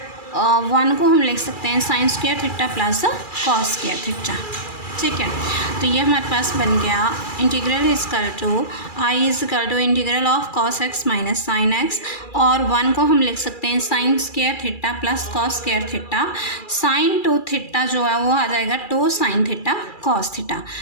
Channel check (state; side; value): late; right; 2.3 ms